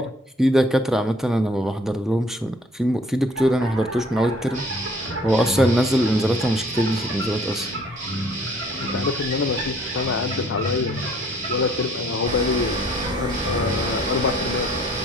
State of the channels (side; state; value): both; normal; correlation 0.58